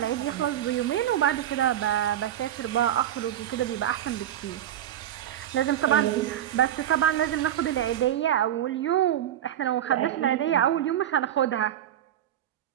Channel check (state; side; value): quieter; left; 11.1 dB